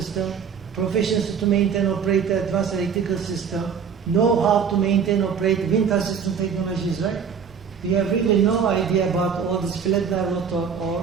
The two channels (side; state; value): left; quieter; 6.8 dB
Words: Proficiency to maintain, operate advanced electrical system. Know how to maintain, operate wind assistant technologies, right? We have really no idea about all these flat-line rotor